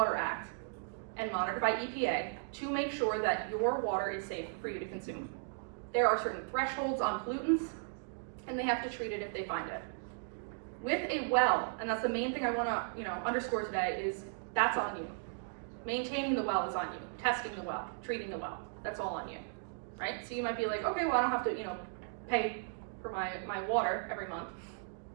Act and monitored by EPA to make sure that your water is safe for you to consume. There are certain thresholds on pollutants, and they have to treat it if they find it. With a well, and that's the main thing I want to underscore today, is that's on you. Maintaining the well is on you. Testing the well, treating the well, that's all on you, right? So you might be like, okay, well I don't have to pay for my water every month,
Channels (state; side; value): silent; left; digital silence